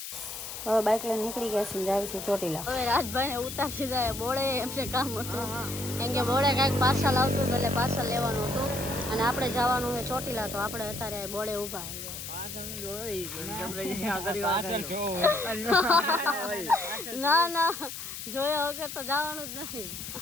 હવે બાઇક લઈને નીકળી ગયા છે, જાવી છે ચોટીલા. હવે રાજભાઈ ને ઉતારી જાય બોળે એમ છે કામ હતું, કેમ કે બોળે કાંઈક પાર્સલ આવતું એટલે પાર્સલ લેવાનું હતું અને આપણે જવાનું છે ચોટીલા. તો આપણે અત્યારે બોળે ઊભા ના ના જોયા વગર તો જવાનું જ નથી.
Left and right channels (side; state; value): left; noise; hiss, 8 dB below the sound